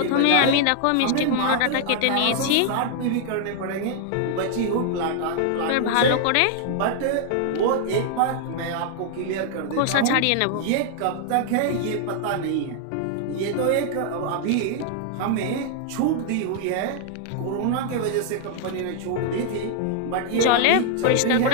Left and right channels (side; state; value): both; different; correlation 0.00